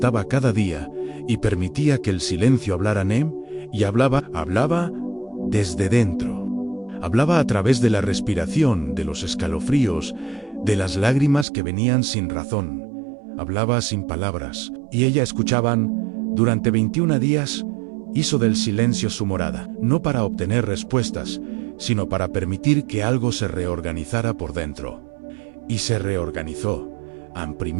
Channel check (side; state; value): left; drops out; at 11.5 s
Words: cada día y permitía que el silencio hablara en él, y hablaba desde dentro. Hablaba a través de la respiración, de los escalofríos, de las lágrimas que venían sin razón. Hablaba sin palabras, y ella escuchaban. Durante 21 días, hizo del silencio su morada, no para obtener respuestas, sino para permitir que algo se reorganizara por dentro. Y se reorganizó.